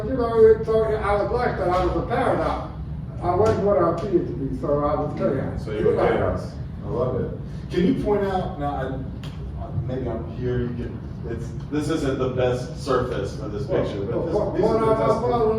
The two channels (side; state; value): both; identical; correlation 1.00